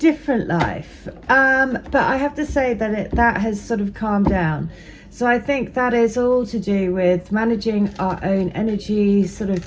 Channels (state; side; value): identical; both; correlation 1.00